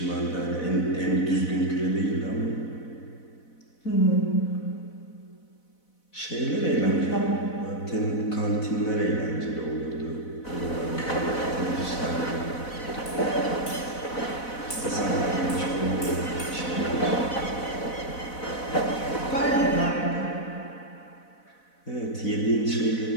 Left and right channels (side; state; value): right; late; 4.0 ms